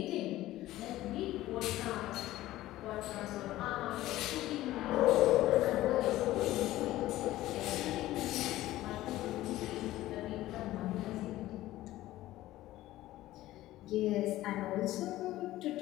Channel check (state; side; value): quieter; right; 15.7 dB